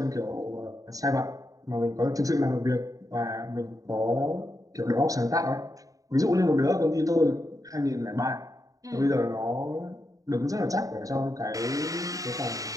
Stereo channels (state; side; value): late; left; 0.17 ms